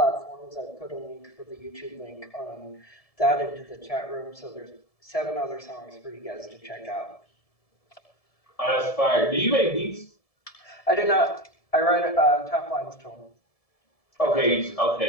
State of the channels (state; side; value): late; right; 1.7 ms